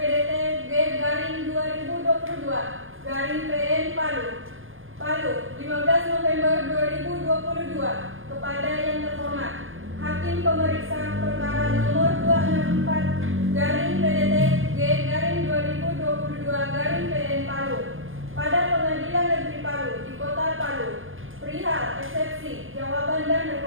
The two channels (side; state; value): left; late; 0.59 ms